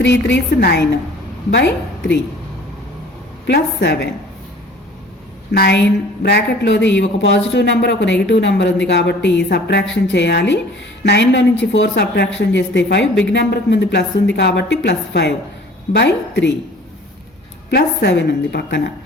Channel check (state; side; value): normal; both; correlation 0.49